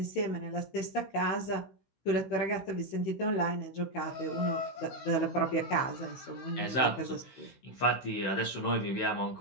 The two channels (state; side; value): late; right; 16 ms